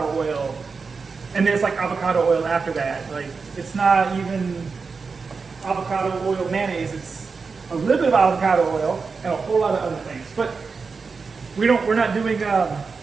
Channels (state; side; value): quieter; left; 4.8 dB